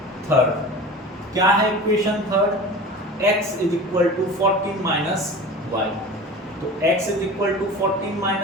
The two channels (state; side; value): normal; both; correlation 0.36